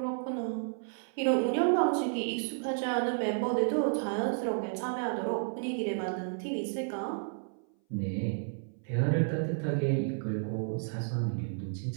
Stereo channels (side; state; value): left; silent; 57 dB below the other